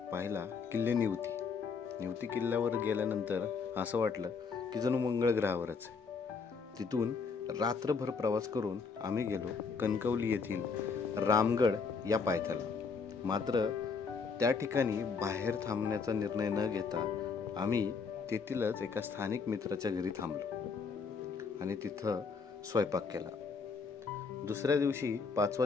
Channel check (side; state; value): right; quieter; 5.2 dB